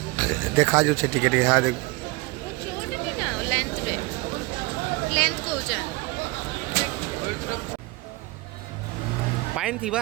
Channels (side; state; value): left; quieter; 23.8 dB